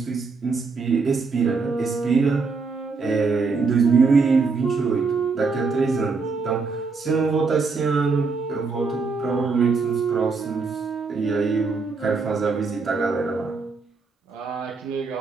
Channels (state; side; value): quieter; left; 4.5 dB